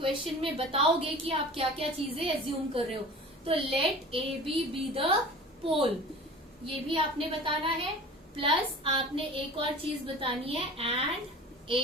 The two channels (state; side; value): normal; both; correlation 0.40